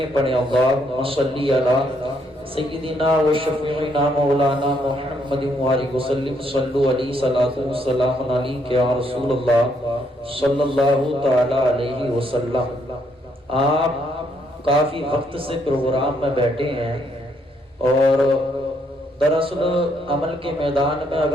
پڑھیں اللہم صلی علی سیدنا و شفیعنا مولانا محمد وآلہ وسلم، صلو علیہ صلاۃ و سلام علیک یا رسول اللہ صلی اللہ تعالی علیہ وسلم۔ آپ کافی وقت سے پروگرام میں بیٹھے ہیں، اور دراصل عمل کے میدان میں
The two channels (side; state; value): both; normal; correlation 0.72